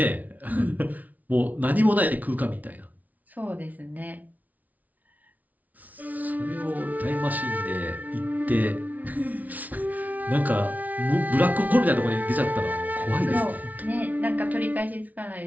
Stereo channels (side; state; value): left; late; 0.075 ms